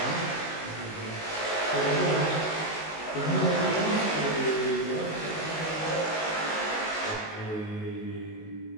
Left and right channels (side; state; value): right; late; 19 ms